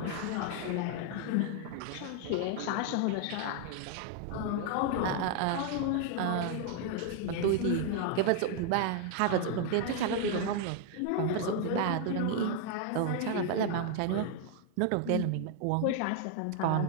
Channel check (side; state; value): both; different; correlation 0.00